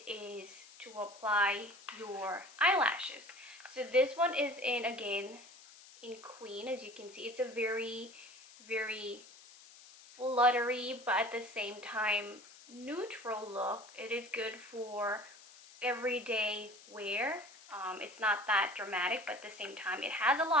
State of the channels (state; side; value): noise; left; hiss, 21 dB below the sound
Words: is to apply your eyelashes. So this one is again in Queen. As you can see, it's a very, very fluttery, but at the same time neutral look. It is good for everyday wear. It's not that dramatic, but at the same time it has a